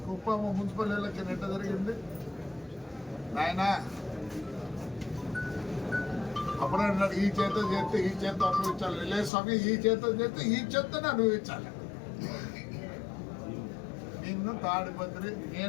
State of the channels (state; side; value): drops out; right; at 9.3 s